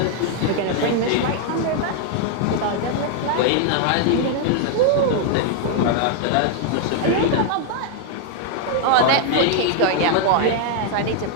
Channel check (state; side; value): different; both; correlation 0.00